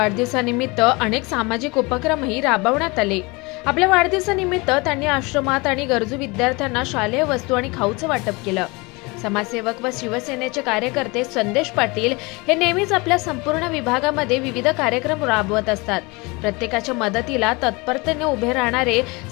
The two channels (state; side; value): quieter; right; 26.1 dB